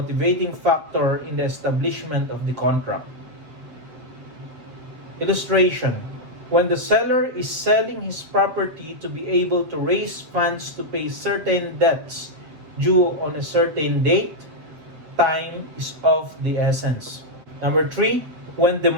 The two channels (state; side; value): late; left; 7.5 ms